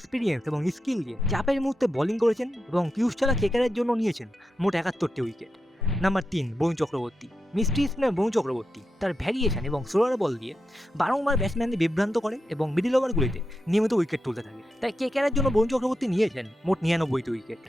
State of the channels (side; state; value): both; normal; correlation 0.88